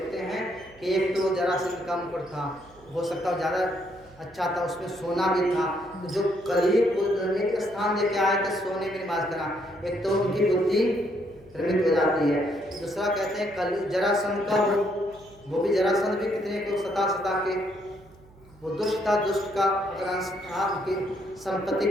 हैं कि एक तो जरासंध का मुकुट था, हो सकता है ज़्यादा अच्छा था, उसमें सोना भी था। तो जो करीब एक स्थान लेके आए थे सोने में निवास करा, एक तो उनकी बुद्धि भ्रमित हो जाती है। दूसरा कहते हैं कल जरासंध का वो भी जरासंध भी कितने को सता के वो दुष्ट था, दुष्ट का अगर अंश था, उनकी संपत्ति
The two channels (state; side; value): noise; right; hum, 26 dB below the sound